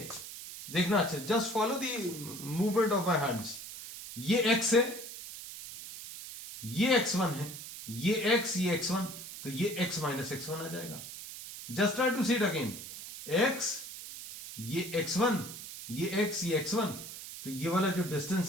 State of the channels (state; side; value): noise; right; hiss, 11 dB below the sound